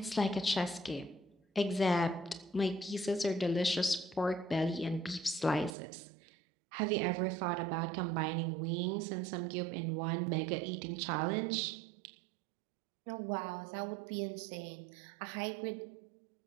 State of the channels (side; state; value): left; drops out; at 5.8 s